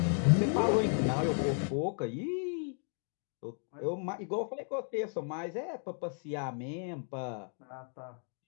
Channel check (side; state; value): right; silent; 55 dB below the other